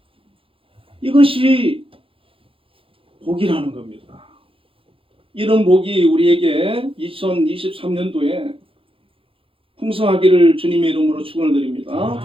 이것이 복이라는 겁니다. 이런 복이 우리에게 2023년도에 풍성하기를 주님의 이름으로 축원을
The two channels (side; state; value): left; late; 0.26 ms